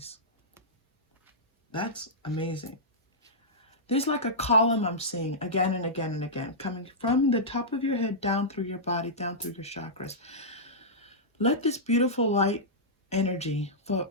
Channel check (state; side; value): normal; both; correlation -0.12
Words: That's amazing. There's like a column I'm seeing again and again and again, coming from the top of your head down through your body, down through your chakras. Let this beautiful light energy flow